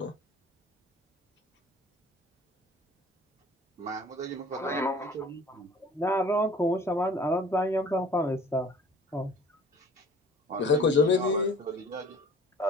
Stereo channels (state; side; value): normal; both; correlation 0.48